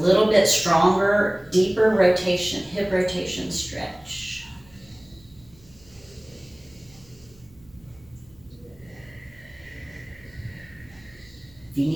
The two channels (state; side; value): noise; right; hum, 27 dB below the sound